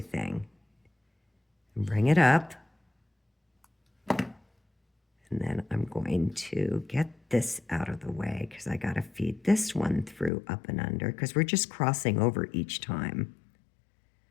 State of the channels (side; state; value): right; drops out; at 10.3 s